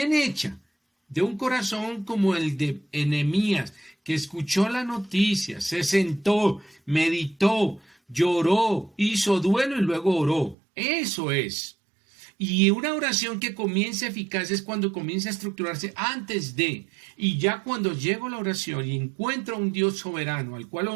hecha, de un corazón como el de Nehemías, que escuchó la noticia, se sentó, meditó, lloró, hizo duelo y luego oró. Eso es. Y una oración que comienza eficaz es cuando comienza a estructurarse antes de. Y ya cuando llego a la oración y encuentro a un Dios soberano al cual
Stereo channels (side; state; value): left; drops out; at 10.6 s